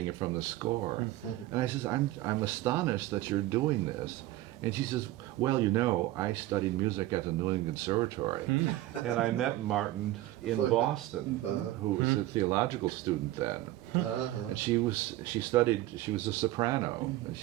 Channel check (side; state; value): left; quieter; 16.2 dB